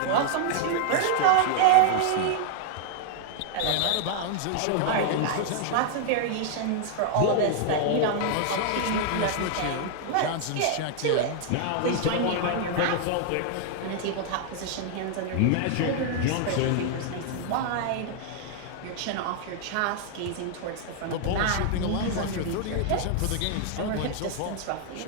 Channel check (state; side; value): different; both; correlation 0.00